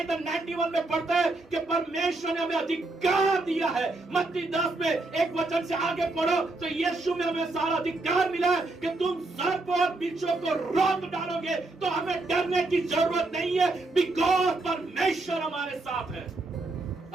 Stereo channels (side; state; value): left; quieter; 3.1 dB